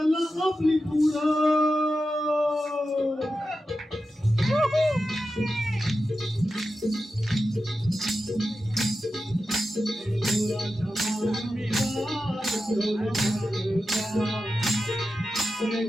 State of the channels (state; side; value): normal; both; correlation 0.91